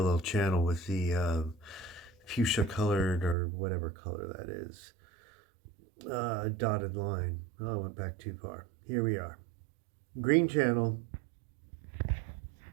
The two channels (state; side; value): drops out; left; at 3.4 s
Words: channel with the fuchsia colored or whatever color that is. Dotted line. Oh, I went back too far. Here we are. Green channel,